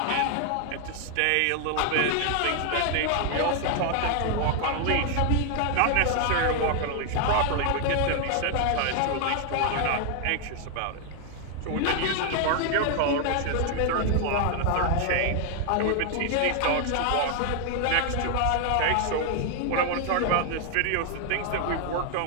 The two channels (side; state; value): both; different; correlation 0.00